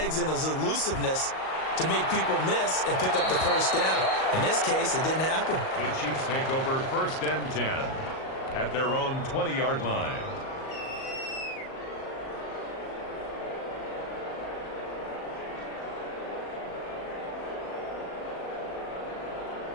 and his elusiveness to make people miss and pick up the 1st down. In this case, it didn't happen. The Chiefs take over 1st and 10 at their own 20-yard line.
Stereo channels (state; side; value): late; right; 38 ms